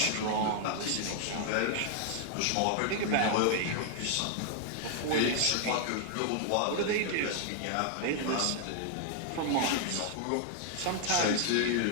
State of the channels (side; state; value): both; different; correlation 0.00